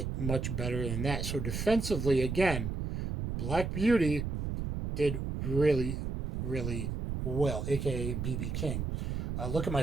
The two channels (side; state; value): right; noise; rumble, 3 dB below the sound